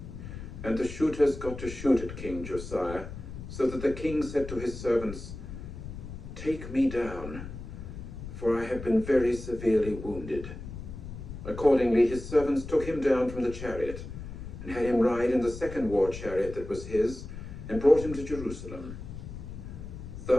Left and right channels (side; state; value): left; noise; rumble, 10 dB below the sound